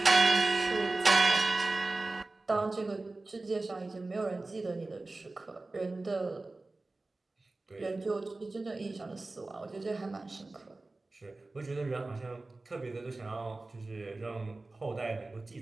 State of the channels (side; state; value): left; quieter; 3.2 dB